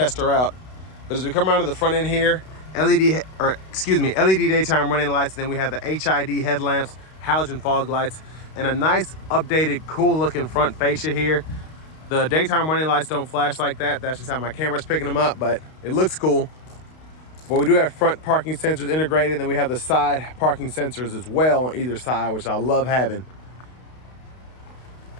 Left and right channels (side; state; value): right; late; 32 ms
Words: her out. But as we come around to the front end here, LED daytime running lights, and then we have the HID headlamps, halogen fog lights, and a nice updated cool looking front fascia here. The daytime running lights don't flash like that. That's just how my camera's picking them up, but it looks cool. But we do have front parking sensors integrated, and then we have the side parking sensors as well on either side, which I love having.